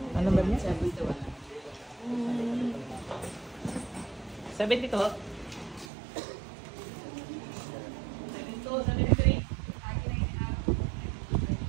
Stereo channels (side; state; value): left; drops out; at 5.9 s